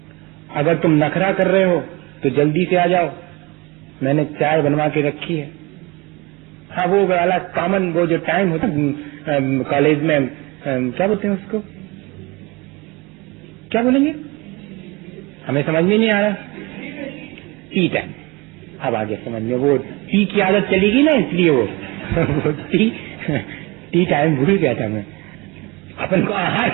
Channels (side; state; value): left; quieter; 24.6 dB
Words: अगर तुम नखरा कर रहे हो तो जल्दी से आ जाओ, मैंने चाय बनवा के रखी है। हाँ, वो वाला कॉमन वो जो टाइम होता कॉलेज में, क्या बोलते हैं उसको, क्या बोलेंगे, हमें समझ में नहीं आ रहा, टी टाइम। अब आगे समझ में, वो टी की आदत चली गई ना, इसलिए वो टी टाइम भूल गया था मैं। अपन को आहार